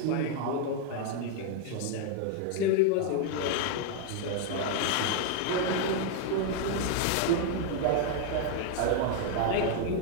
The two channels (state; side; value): different; both; correlation 0.00